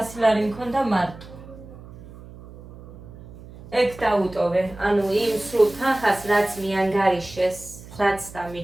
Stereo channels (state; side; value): noise; right; hum, 17 dB below the sound